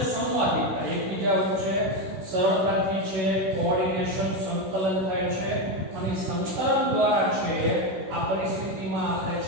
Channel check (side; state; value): left; late; 16 ms